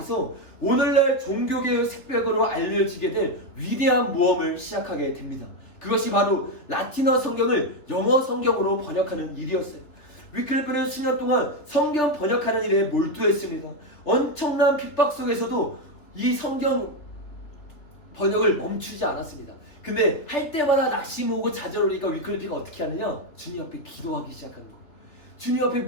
오늘날 종교개혁 색벽으로 알려지게 될 위대한 모험을 시작하게 됩니다. 그것이 바로 라틴어 성경을 영어 성경으로 번역하는 일이었어요. 위클리프는 수년 동안 성경 번역하는 일에 몰두했습니다. 엄청난 핍박 속에서도 이 성경 번역을 멈추지 않았습니다. 근데 할 때마다 낙심 오고 좌절 오니까 위클리프가 어떻게 하느냐? 주님 앞에 기도하기 시작하는 거예요. 주님 앞에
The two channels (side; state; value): right; late; 3.4 ms